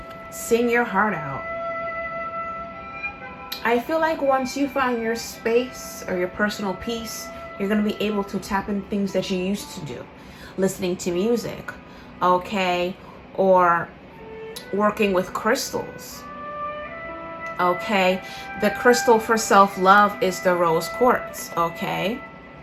Sing your heart out. I feel like once you find your space or your personal peace, you're going to be able to tap in things that you used to do. Listening to music, okay? Or working with crystals, okay? The crystal for self-love is the rose quartz, okay?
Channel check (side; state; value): both; identical; correlation 1.00